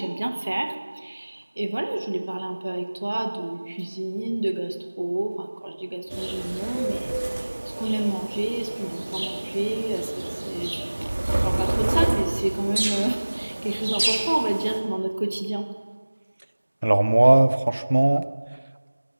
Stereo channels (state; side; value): inverted; both; correlation -1.00